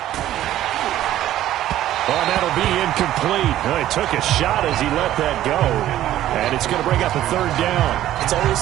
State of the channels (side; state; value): left; quieter; 13.1 dB